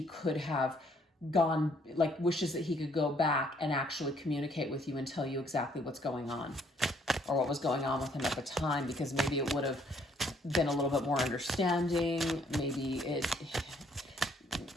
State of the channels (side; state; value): both; normal; correlation 0.65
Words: could have gone, like wishes that he could go back and actually communicate with you and tell you exactly what's going on, or what was going on with him at the time, because maybe it would have been a little bit more understanding. Maybe